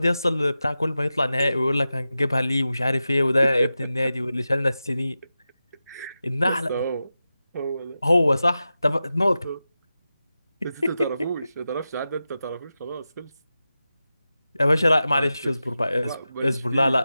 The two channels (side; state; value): both; inverted; correlation -0.93